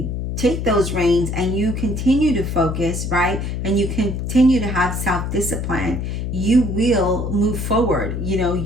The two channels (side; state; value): left; noise; hum, 3 dB below the sound